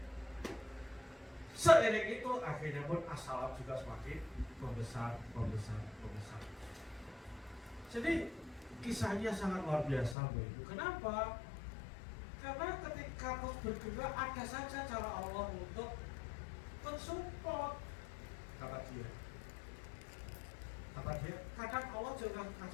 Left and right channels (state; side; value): drops out; right; at 10.2 s